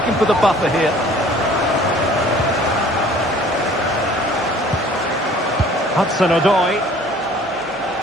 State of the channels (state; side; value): normal; both; correlation 0.52